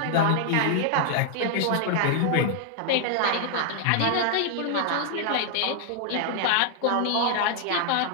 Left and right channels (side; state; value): both; different; correlation 0.00